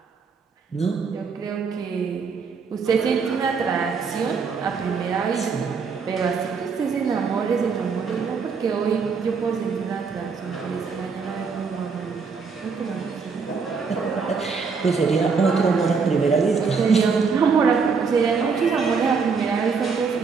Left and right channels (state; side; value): quieter; left; 5.3 dB